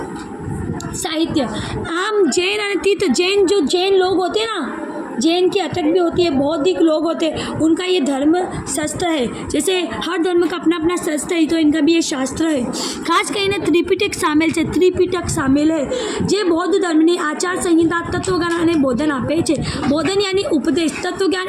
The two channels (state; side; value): identical; both; correlation 1.00